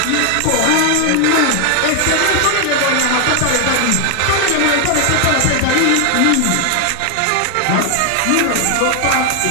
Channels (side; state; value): both; different; correlation 0.00